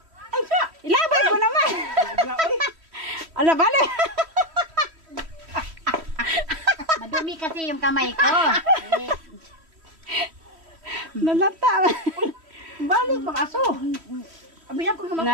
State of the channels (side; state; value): left; late; 3.1 ms